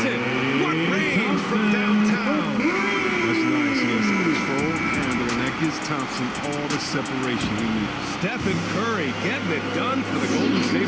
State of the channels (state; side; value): identical; both; correlation 1.00